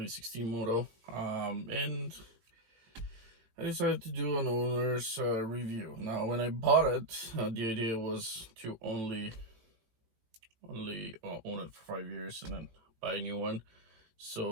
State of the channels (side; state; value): left; late; 18 ms